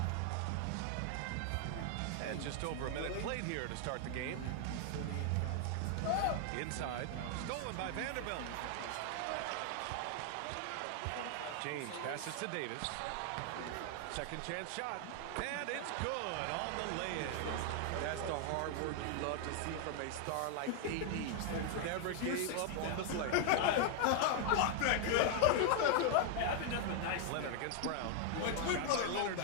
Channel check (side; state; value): both; different; correlation 0.00